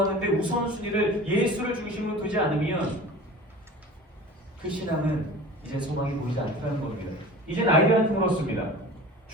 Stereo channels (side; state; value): both; normal; correlation 0.39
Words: 우선순위를 예수를 중심으로 두지 않으면 그 신앙은 이제 소망이 보이지 않다는 겁니다. 이젠 아이들한테 물었습니다.